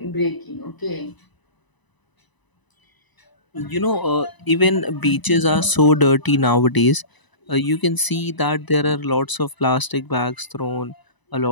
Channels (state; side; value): late; right; 1.0 ms